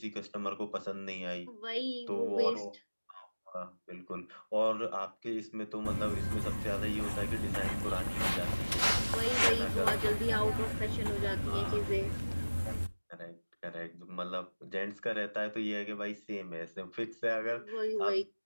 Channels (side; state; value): both; inverted; correlation -1.00